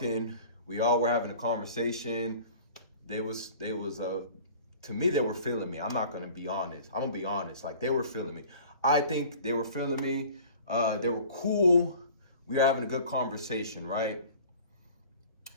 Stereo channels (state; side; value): inverted; both; correlation -0.45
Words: We all were having a conversation. They was to me, they were feeling me. I'm not gonna be honest. I'm gonna be honest. Like, they were feeling me. I think they were feeling me. They were cool. We were having a good conversation, right?